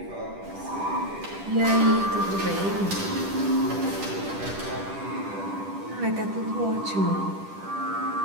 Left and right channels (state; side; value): late; left; 10 ms